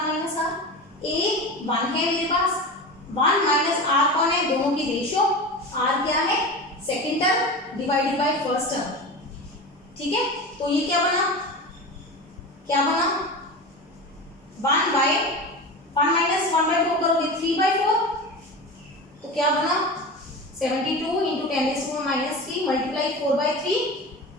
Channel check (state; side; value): normal; both; correlation 0.28